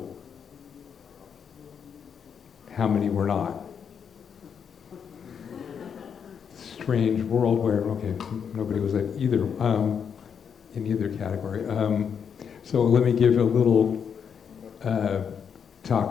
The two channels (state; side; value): quieter; right; 7.2 dB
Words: How many were not? Strange world where, okay, nobody was at either, in either category. So let me give a little talk